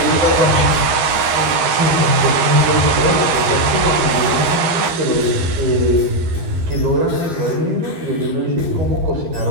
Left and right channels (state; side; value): late; left; 13 ms